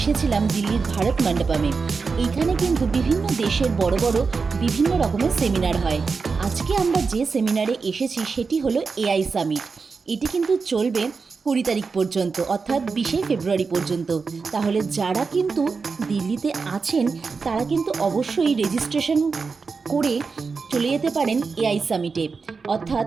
দিল্লির ভারত মণ্ডপমে। এইখানে কিন্তু বিভিন্ন দেশের বড় বড় বিভিন্ন রকমের সেমিনার হয়। আজকে আমরা যে সেমিনারে এসেছি সেটি হলো এআই সামিট। এটি কিন্তু চলবে 20 তারিখ পর্যন্ত, অর্থাৎ 20 ফেব্রুয়ারি পর্যন্ত। তাহলে যারা কিন্তু দিল্লিতে আছেন তারা কিন্তু অবশ্যই রেজিস্ট্রেশন করে চলে যেতে পারেন এআই সামিটে। অর্থাৎ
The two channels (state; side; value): quieter; left; 4.8 dB